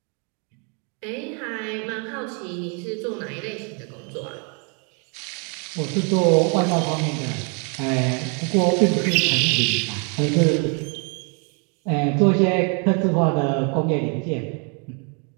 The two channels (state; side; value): quieter; left; 37.2 dB